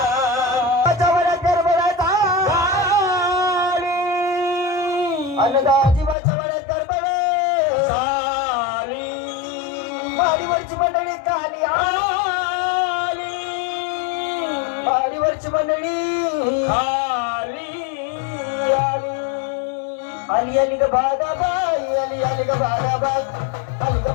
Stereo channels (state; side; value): drops out; right; at 6.2 s